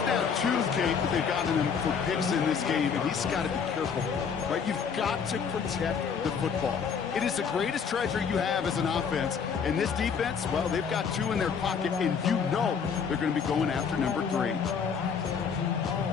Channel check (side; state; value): right; quieter; 6.4 dB